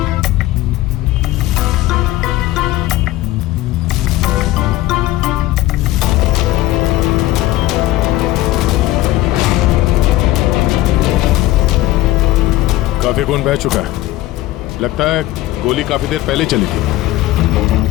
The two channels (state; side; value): quieter; right; 16.2 dB